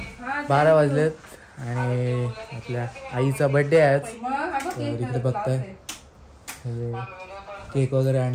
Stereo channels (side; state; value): both; identical; correlation 1.00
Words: 12 वाजलेत आणि आपल्या आईचा birthday आहे आज. तर इकडे बघताय केक वगैरे